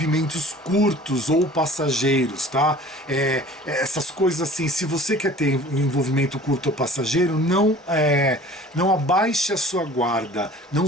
curtos ou passageiros, tá? Essas coisas assim, se você quer ter um envolvimento curto ou passageiro, não abaixe a sua guarda, não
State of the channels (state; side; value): normal; both; correlation 0.46